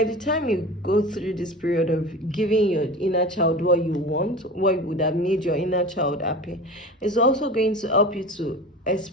the time you go through this period of giving your inner child what you want, what would have made your inner child happy, it's also going to help you to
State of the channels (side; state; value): both; normal; correlation 0.33